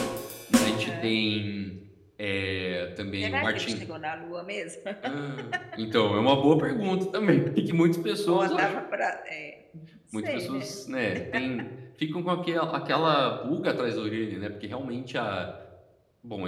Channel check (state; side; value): identical; both; correlation 1.00